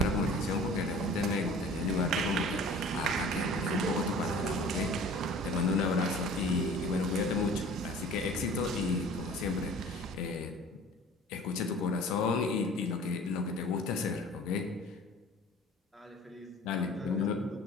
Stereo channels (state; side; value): normal; both; correlation 0.45